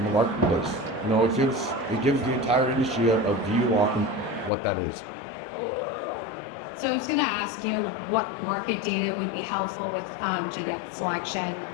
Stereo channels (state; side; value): drops out; right; at 4.5 s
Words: the marketplace. You know, it gives the entire industry a view on what that is. So I was going to ask you what market data would be helpful with genetic selection.